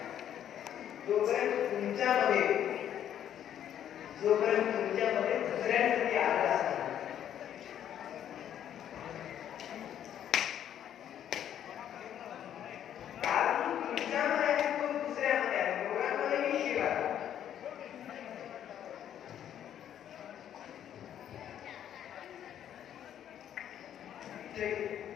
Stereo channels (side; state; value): right; quieter; 10.2 dB